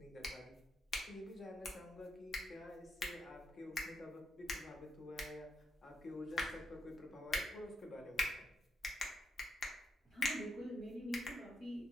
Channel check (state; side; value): normal; both; correlation 0.81